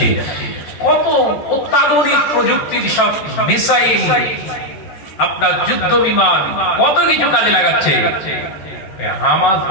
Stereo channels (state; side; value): late; right; 14 ms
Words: কত অত্যাধুনিক প্রযুক্তির সব মিসাইল, আপনার যুদ্ধ বিমান, কত কিছু কাজে লাগাচ্ছে। হামাস